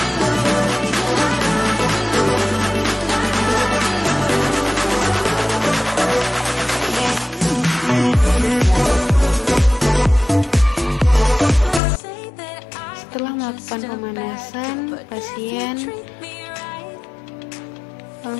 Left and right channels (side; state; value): right; drops out; at 11.8 s